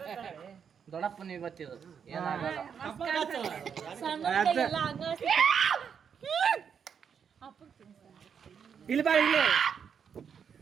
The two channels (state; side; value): quieter; left; 7.2 dB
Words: ದೊಡ್ಡಪ್ಪನ ಇವತ್ತಿರೋದು ಏನಾಗಲ್ಲ. ಇಲ್ಲಿ ಬಾ, ಇಲ್ಲಿ